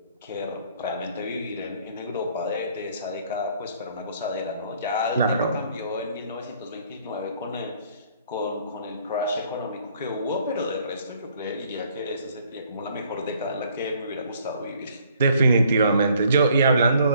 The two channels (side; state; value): both; inverted; correlation -0.62